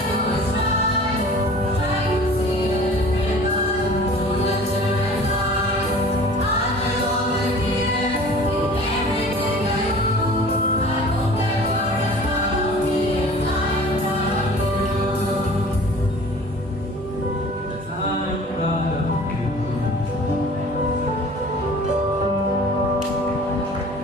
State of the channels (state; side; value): normal; both; correlation 0.45